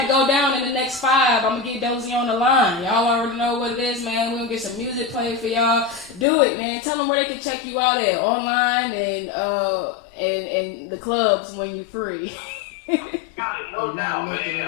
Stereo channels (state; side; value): drops out; right; at 6.2 s